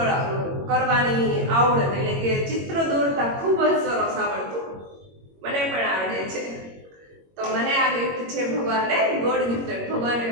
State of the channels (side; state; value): left; late; 21 ms